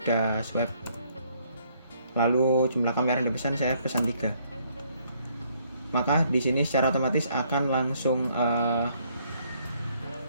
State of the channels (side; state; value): both; inverted; correlation -0.67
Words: swipe. Lalu jumlah kamar yang dipesan saya pesan 3. Maka di sini secara otomatis akan langsung